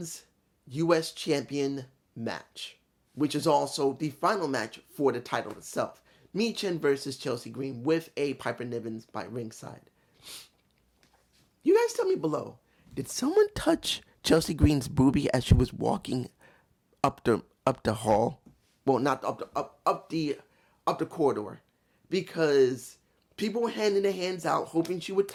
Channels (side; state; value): both; identical; correlation 1.00